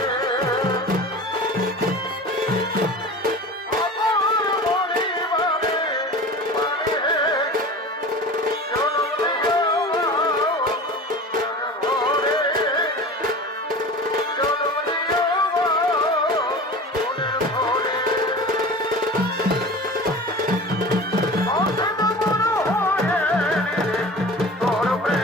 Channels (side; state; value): both; normal; correlation 0.35